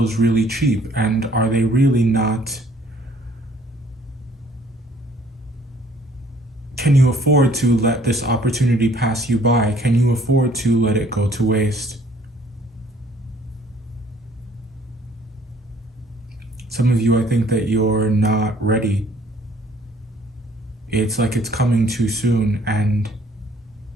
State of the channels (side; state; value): both; normal; correlation 0.59